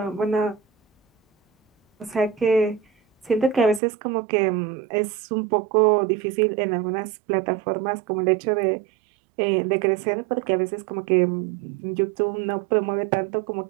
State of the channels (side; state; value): left; drops out; at 3.8 s